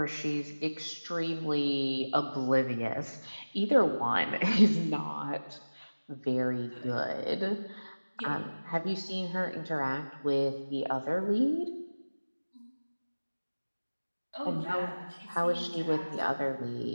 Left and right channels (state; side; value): inverted; both; correlation -1.00